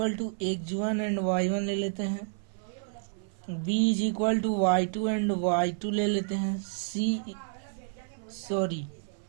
to x1 and y1 ले लेते हैं, B is equal to y2 and y2 ले लेते हैं,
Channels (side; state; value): left; silent; 58 dB below the other